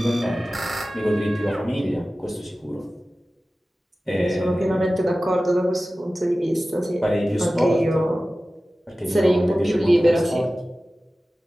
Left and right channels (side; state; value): both; normal; correlation 0.96